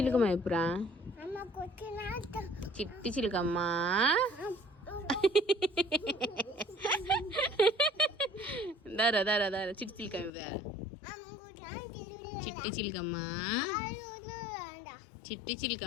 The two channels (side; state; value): right; drops out; at 10.3 s